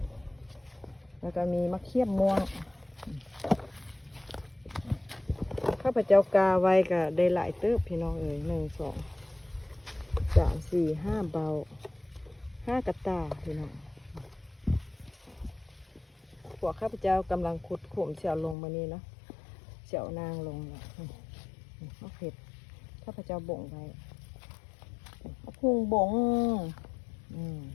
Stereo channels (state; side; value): drops out; right; at 18.6 s